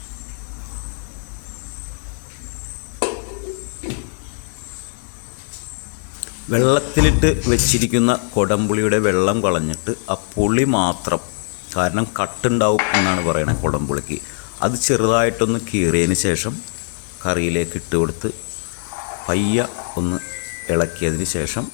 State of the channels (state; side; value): silent; right; 64 dB below the other